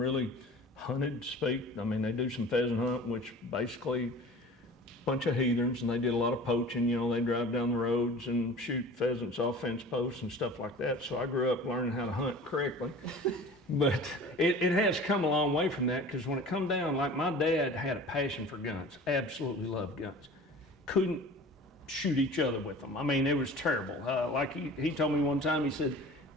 hunted, to speak. I mean, they do some pheasant hunt, which basically a bunch of heathens, and they did a lot of poaching. You know, they drive down the roads and shoot pheasants off fence posts and stuff like that. So I grew up learning how to hunt correctly. But it has come a long way from that, because when it come down, like, my dad had a passion for guns, absolutely loved guns. Couldn't shoot each other with them. I mean, it was terrible. Like he told me one time, he said,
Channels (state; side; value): normal; both; correlation 0.41